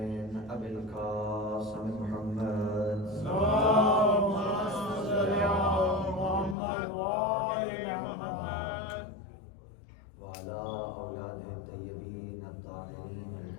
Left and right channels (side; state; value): right; drops out; at 6.6 s